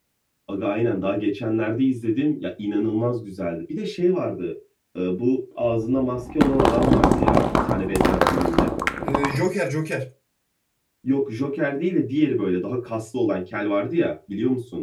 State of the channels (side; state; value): both; identical; correlation 1.00